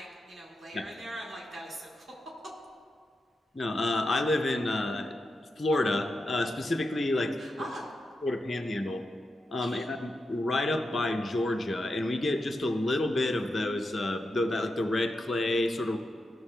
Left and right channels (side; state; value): both; normal; correlation 0.88